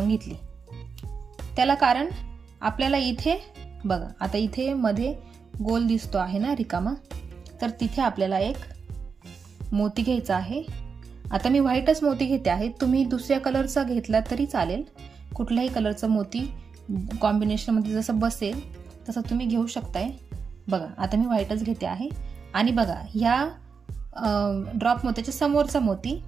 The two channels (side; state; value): left; quieter; 5.6 dB